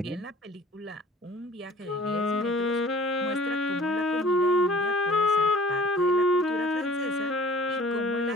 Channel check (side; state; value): both; normal; correlation 0.49